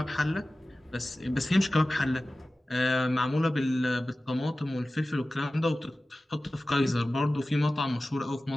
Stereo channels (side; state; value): both; normal; correlation 0.96